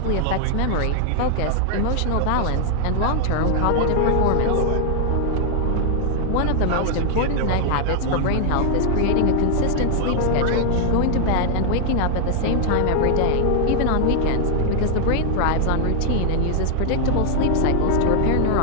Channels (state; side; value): different; both; correlation 0.00